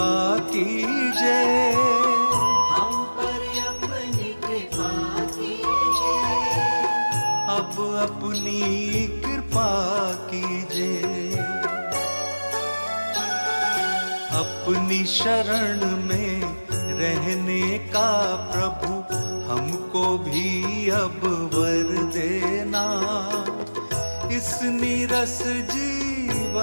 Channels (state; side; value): inverted; both; correlation -1.00